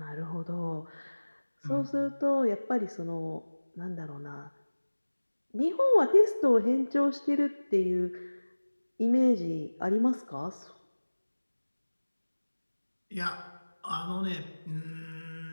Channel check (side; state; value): both; inverted; correlation -1.00